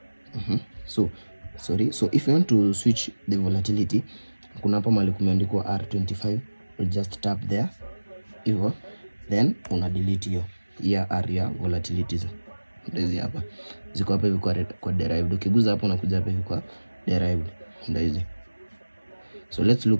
So if you want to switch the volatility, kuna hapa mahali kumeandikwa R25, we just tap there hivyo, then una delete hiyo area volatilities. Ndio hapa ziko hapa hivi kwa derived. Ukiguza hapo unakuja hapa hivi kwa derived, ndio hizi. So let's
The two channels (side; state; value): both; inverted; correlation -1.00